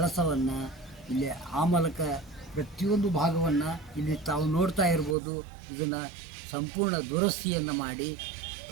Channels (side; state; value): left; drops out; at 5.2 s